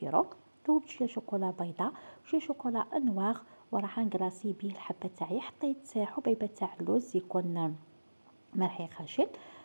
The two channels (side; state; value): both; inverted; correlation -1.00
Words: ذوبت شوية شوكولا بيضاء وشوية شوكولا نواغ وراح نكلاصي بيه الحبة تاعي. حطيت حبيبة تاع اللوز يكون مرحي خشن.